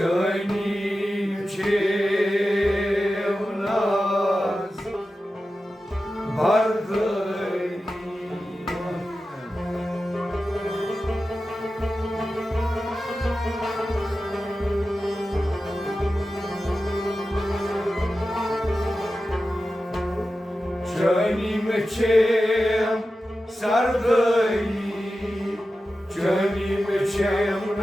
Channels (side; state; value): both; normal; correlation 0.93